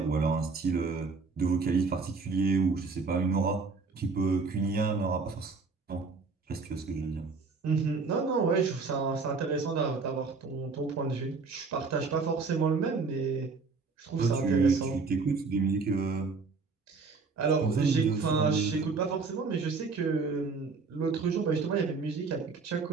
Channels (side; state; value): left; quieter; 4.4 dB